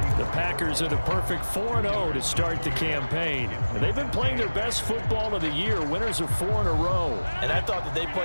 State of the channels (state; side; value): inverted; both; correlation -1.00